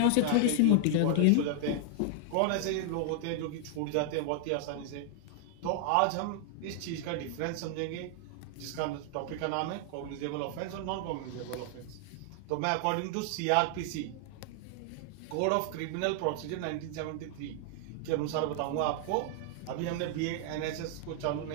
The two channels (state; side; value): different; both; correlation 0.00